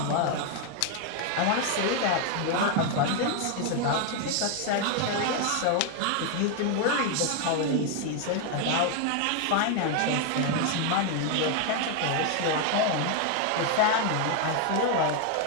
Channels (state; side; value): different; both; correlation 0.01